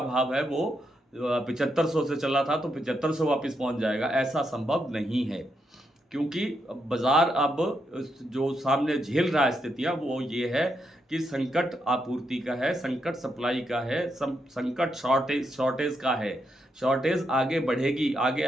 भाव है वो 7500 से चला था तो 7500 वापस पहुंच जाएगा, ऐसा संभव नहीं है। क्योंकि बाजार अब जो सामने झेल रहा है स्थितियाँ वो ये है कि संकट आपूर्ति का है, संकट सप्लाई का है, संकट शॉर्टेज का है। शॉर्टेज आगे बढ़ेगी, आगे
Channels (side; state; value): both; normal; correlation 0.81